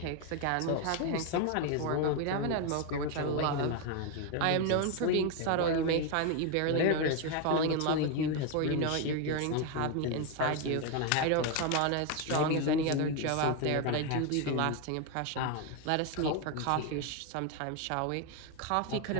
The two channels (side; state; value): both; different; correlation 0.01